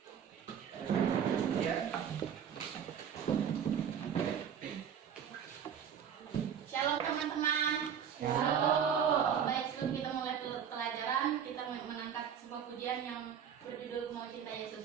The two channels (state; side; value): quieter; left; 8.2 dB